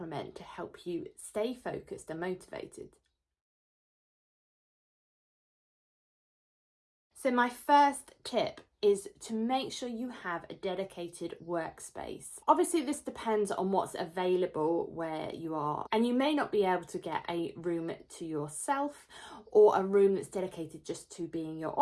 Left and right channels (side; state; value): both; identical; correlation 1.00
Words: to help you stay focused and motivated. So my first tip is to make sure you have a dedicated workspace. Obviously, this depends on what's available where you are, and you may not be able to get a room to yourself or a room that's dedicated just to being your